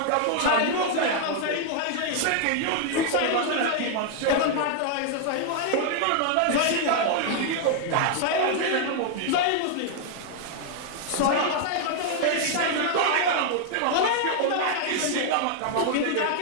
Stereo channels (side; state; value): both; different; correlation 0.00